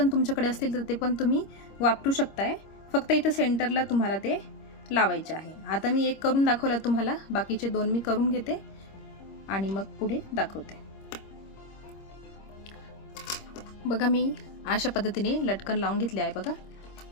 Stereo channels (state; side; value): late; right; 26 ms